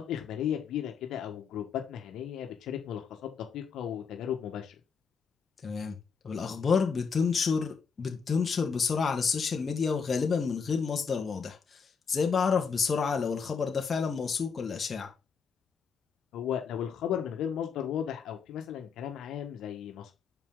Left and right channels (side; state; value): right; quieter; 5.9 dB